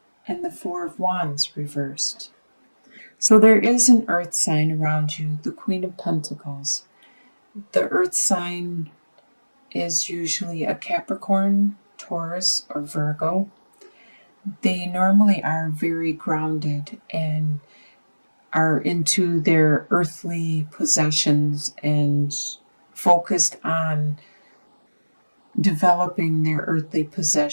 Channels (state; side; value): inverted; both; correlation -1.00